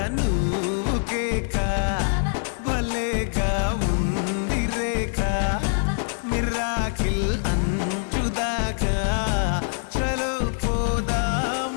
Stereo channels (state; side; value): silent; right; 62 dB below the other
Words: నువ్వు కేక భలేగా ఉంది రేఖ మిరాకిల్ అంచుదాకా చలో